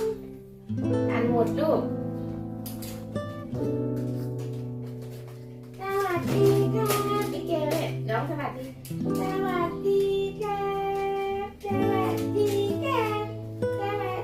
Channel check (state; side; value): identical; both; correlation 1.00